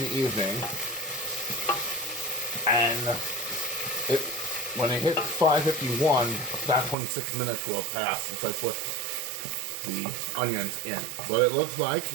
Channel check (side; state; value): left; drops out; at 7.0 s